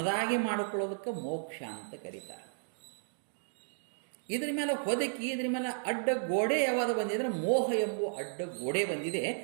ಮಾಡಿಕೊಳ್ಳೋದಕ್ಕೆ ಮೋಕ್ಷ ಅಂತ ಕರೀತಾರೆ. ಇದ್ರ ಮೇಲೆ ಹೊದಕಿ, ಇದ್ರ ಮೇಲೆ ಅಡ್ಡ ಗೋಡೆ ಯಾವಾಗ ಬಂದಿದ್ರೆ ಮೋಹ ಎಂಬುವ ಅಡ್ಡ ಗೋಡೆ ಬಂದಿದೆ.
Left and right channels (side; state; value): left; silent; digital silence